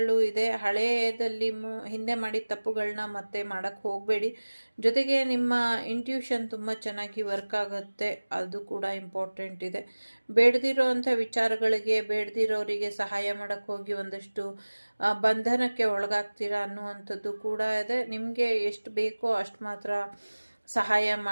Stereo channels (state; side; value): inverted; both; correlation -1.00